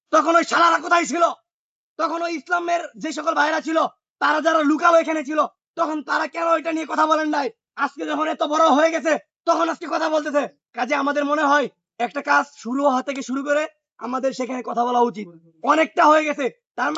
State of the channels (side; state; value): both; identical; correlation 1.00